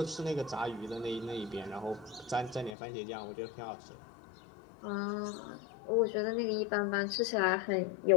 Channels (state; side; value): drops out; right; at 2.8 s